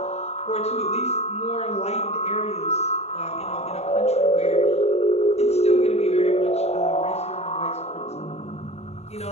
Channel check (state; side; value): late; right; 0.31 ms